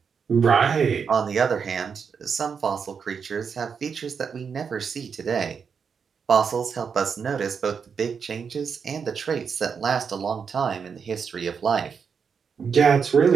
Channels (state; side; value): quieter; left; 6.3 dB